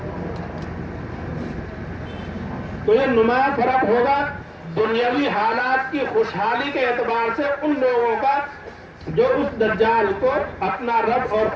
تو یہ نمایاں فرق ہوگا دنیاوی حالات کی خوشحالی کے اعتبار سے ان لوگوں کا جو اس دجال کو اپنا رب اور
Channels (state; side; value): identical; both; correlation 1.00